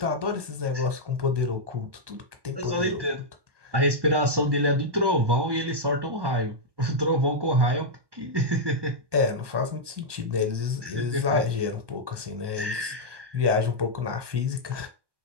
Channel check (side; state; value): left; late; 1.2 ms